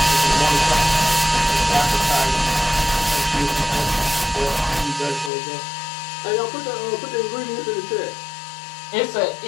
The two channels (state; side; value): drops out; right; at 5.3 s